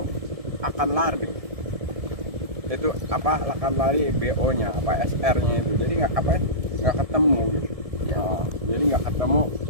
akan lari. Itu apa, akan lari BO-nya, apa SR-nya itu. Jadi nggak ketemu gitu. Jadi nggak ketemu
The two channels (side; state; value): left; late; 1.7 ms